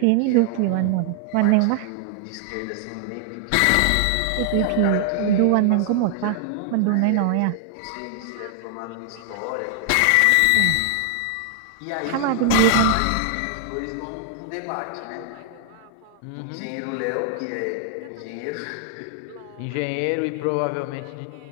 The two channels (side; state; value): both; different; correlation 0.00